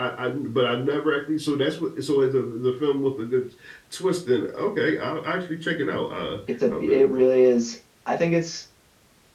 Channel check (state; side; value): identical; both; correlation 1.00